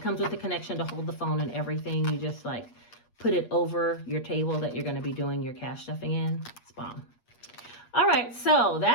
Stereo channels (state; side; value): late; right; 8.4 ms